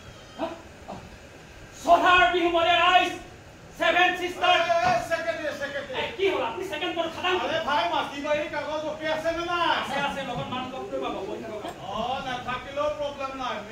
সধাৰ বিহু মলে ৰাইজ 7 সিস্টাৰ কি হ'ল আপুনি সেকেন্ড পৰ খাদাম আরে ভাই মাটি বাড়ি কাগজ ওকে আছে না আছে আছে লগত মান কষ্ট পাব বই থাকক না থাকিলেও প্রবলেম নাই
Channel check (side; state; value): both; identical; correlation 1.00